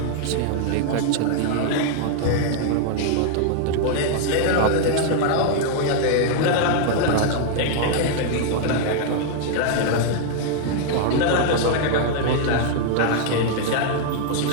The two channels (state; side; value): different; both; correlation 0.00